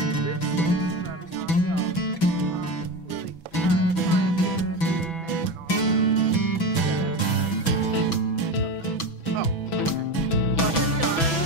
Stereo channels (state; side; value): late; right; 6.1 ms